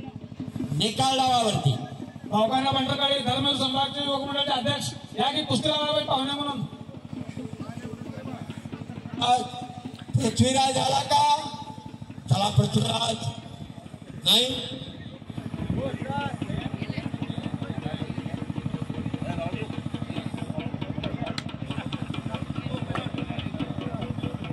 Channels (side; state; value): both; identical; correlation 1.00